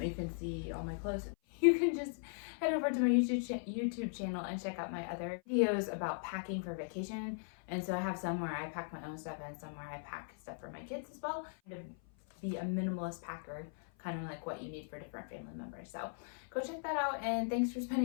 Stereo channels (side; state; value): right; silent; 52 dB below the other